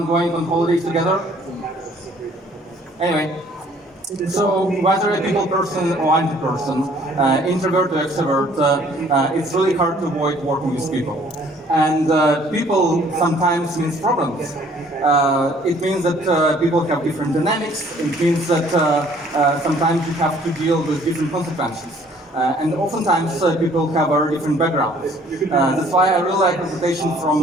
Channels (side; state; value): both; normal; correlation 0.58